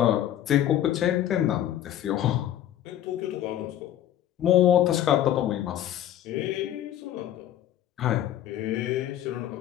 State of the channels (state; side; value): quieter; right; 11.9 dB